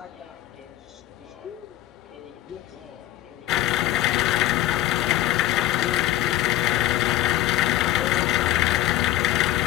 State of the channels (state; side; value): quieter; right; 14.7 dB